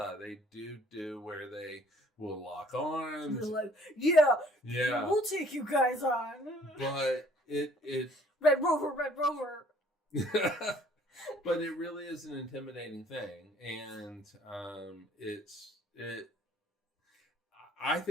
They do where they will lock arms. They're like, yeah, we'll take you guys on. But it Red Rover. But it really is an intimidating thing, and I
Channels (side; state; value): both; normal; correlation 0.58